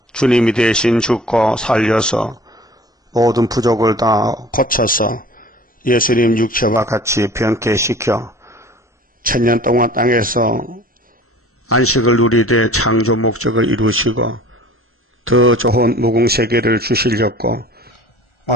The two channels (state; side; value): normal; both; correlation 0.45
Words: 주님이 대신 죽고 살려서 모든 부족을 다 고쳐서 예수님 육체와 같이 변케시켜 천년 동안 땅에서 안식을 누리되 창조 목적을 이루시고 더 좋은 무궁세계를 주시려고